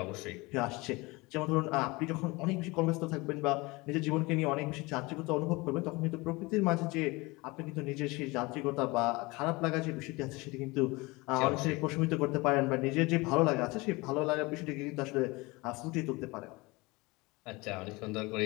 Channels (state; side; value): quieter; right; 23.8 dB